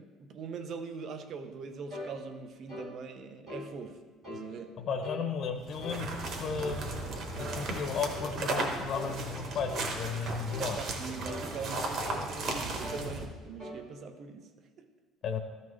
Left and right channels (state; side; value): normal; both; correlation 0.52